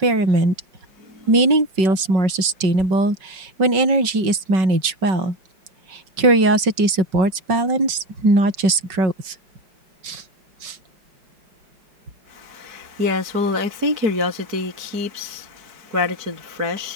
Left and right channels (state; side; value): late; left; 5.3 ms